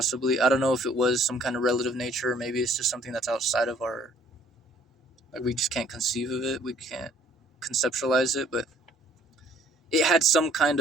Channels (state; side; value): normal; both; correlation 0.59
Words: I don't know if it was some kind of relative nature, or maybe it's just something that's outside of our. Like, we just can't conceive of it. We can't conceptualize it, but it had some kind